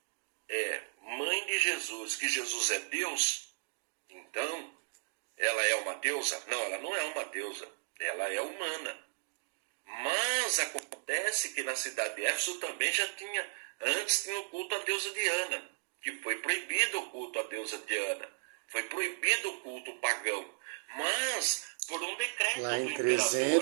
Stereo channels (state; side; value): silent; left; 54 dB below the other